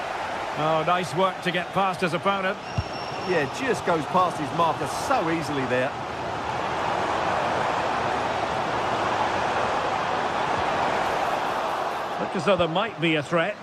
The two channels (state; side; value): identical; both; correlation 1.00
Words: Oh, nice work to get past his opponent. Yeah, just goes past his marker so easily there. Looked as though there might be a threat,